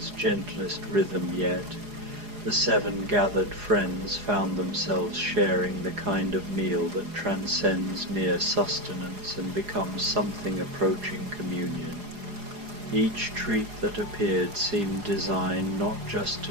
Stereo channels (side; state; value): left; late; 4.8 ms